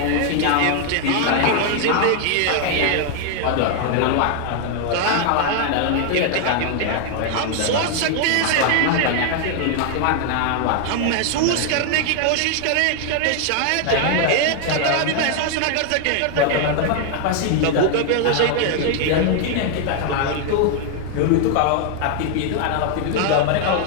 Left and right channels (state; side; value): different; both; correlation 0.00